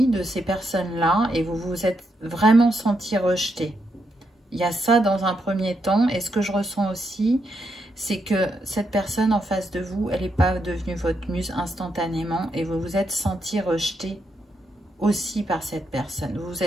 de ces personnes-là et vous vous êtes vraiment senti rejeté. Il y a ça dans un premier temps, et ce que je ressens aussi, c'est que cette personne en face de vous, elle n'est pas devenue votre muse instantanément, et vous vous êtes senti rejeté aussi par cette personne. Vous vous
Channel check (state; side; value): normal; both; correlation 0.80